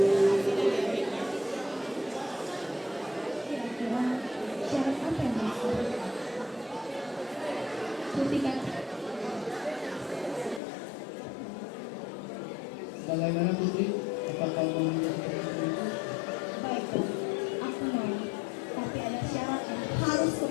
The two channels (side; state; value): right; drops out; at 10.6 s